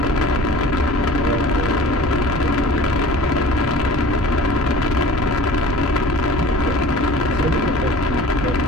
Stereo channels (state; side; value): normal; both; correlation 0.44